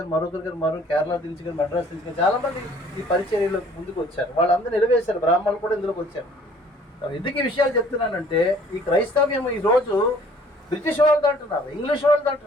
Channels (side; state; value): both; normal; correlation 0.56